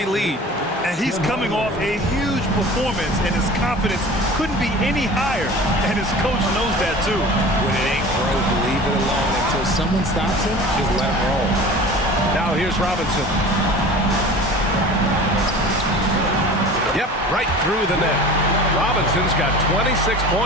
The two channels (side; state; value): both; normal; correlation 0.40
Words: lead. And he's coming off a huge performance, and his confidence couldn't be any higher. And his coach knows that too. When it ain't broke, leave it alone until someone stops him. Just let him roll. Now here's Robinson. Yep, right through the net. Robinson's got 26